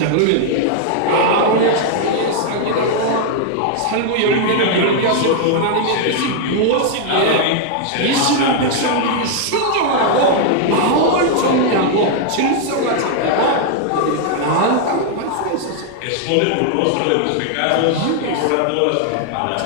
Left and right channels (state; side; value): different; both; correlation 0.00